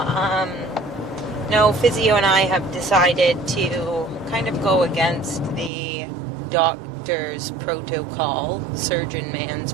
No, Physio and I have decided to kind of go against the doctor's protocol, surgeon man's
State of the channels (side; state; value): left; drops out; at 5.7 s